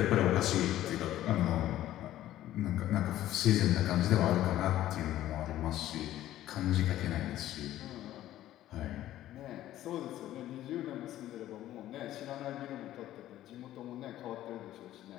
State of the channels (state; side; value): quieter; right; 13.6 dB